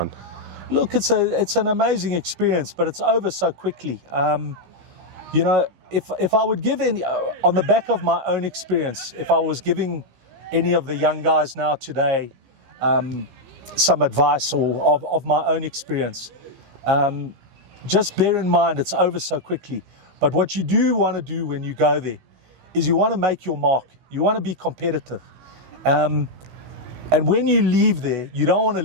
Look, it's an amazing experience, but it's over so quickly. You know, if I would give any, on the back of my own experience, if I was giving any of the young guys now today some advice or of my own experience, just bear in mind it's over so quickly. But what you do want to do when you go there is you want to make your mark. You want to be competitive. And when you leave there, you don't want to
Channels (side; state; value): left; late; 16 ms